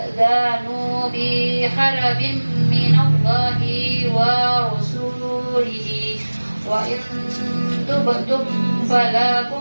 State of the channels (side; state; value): both; inverted; correlation -1.00